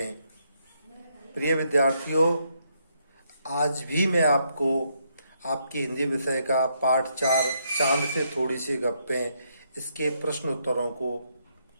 प्रिय विद्यार्थियों, आज भी मैं आपको आपकी हिंदी विषय का पाठ 4 चांद से थोड़ी सी गप्पें इसके प्रश्न उत्तरों को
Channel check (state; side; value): inverted; both; correlation -0.75